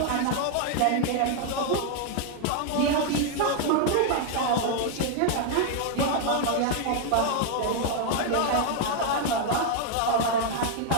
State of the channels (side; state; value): both; different; correlation 0.00